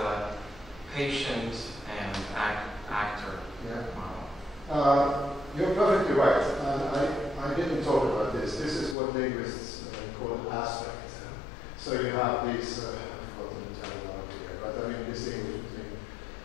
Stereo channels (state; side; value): drops out; right; at 9.0 s